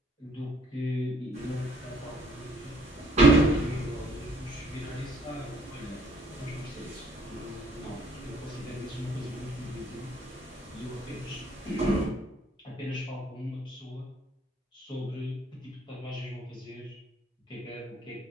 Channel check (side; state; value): both; normal; correlation 0.61